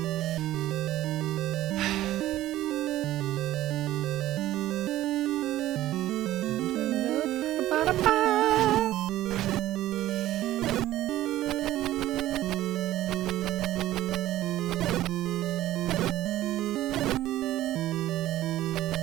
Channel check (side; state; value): left; quieter; 14.6 dB